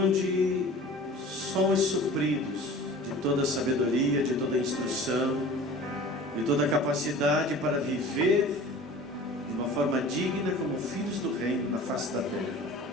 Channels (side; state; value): both; normal; correlation 0.41